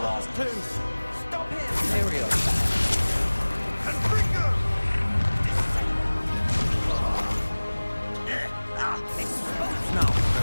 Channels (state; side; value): inverted; both; correlation -1.00